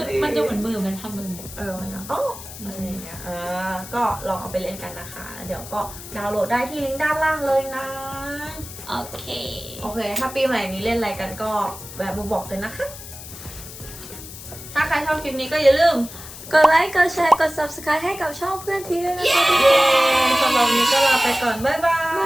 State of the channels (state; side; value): noise; left; hiss, 14 dB below the sound